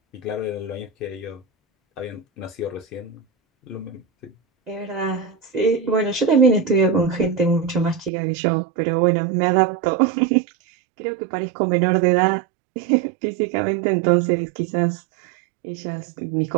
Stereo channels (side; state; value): left; drops out; at 8.1 s